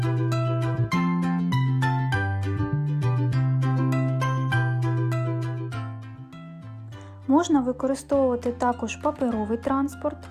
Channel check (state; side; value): identical; both; correlation 1.00